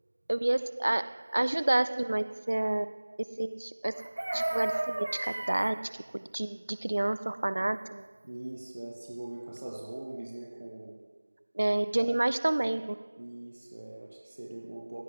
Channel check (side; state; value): both; inverted; correlation -1.00